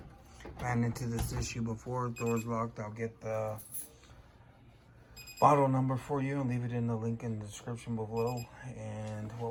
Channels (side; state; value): both; identical; correlation 1.00